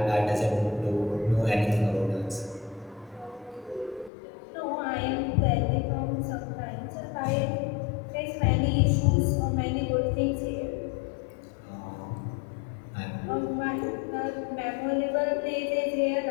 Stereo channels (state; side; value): drops out; right; at 4.1 s